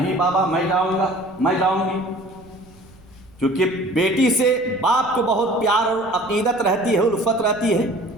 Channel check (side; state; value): right; noise; rumble, 26 dB below the sound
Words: بابا میں جاؤں گا، میں جاؤں گی۔ چونکہ بیٹی سے باپ کو بہت پیار اور عقیدت رہتی ہے، الفت رہتی ہے،